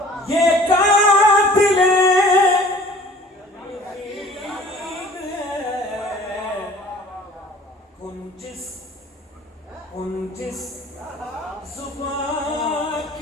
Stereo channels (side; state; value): both; normal; correlation 0.49